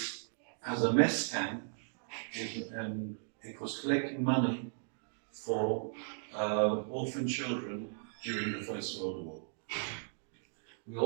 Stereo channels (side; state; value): left; silent; digital silence